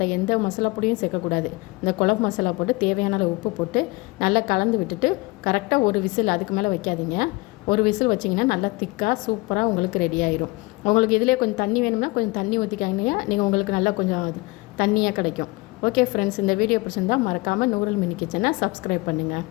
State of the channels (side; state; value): right; quieter; 24.4 dB